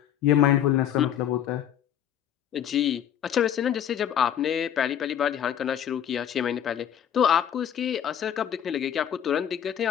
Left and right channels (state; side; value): quieter; right; 9.7 dB